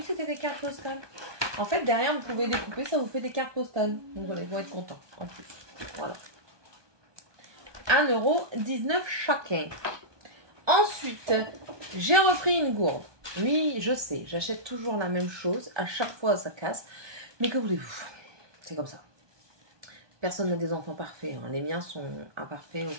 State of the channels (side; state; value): left; late; 1.2 ms